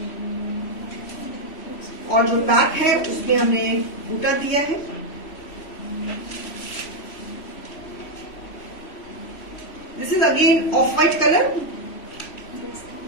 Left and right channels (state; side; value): late; right; 3.1 ms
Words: और जो बैक है उसमें हमने बूटा दिया है. This is again of white colour,